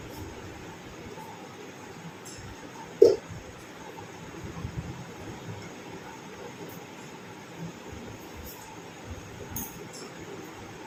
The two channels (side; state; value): both; identical; correlation 1.00